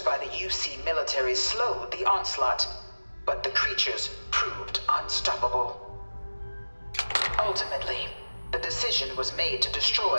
the UC military slowed the onslaught, but the creatures proved unstoppable. Ultimately, the decision was made to destroy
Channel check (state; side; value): inverted; both; correlation -1.00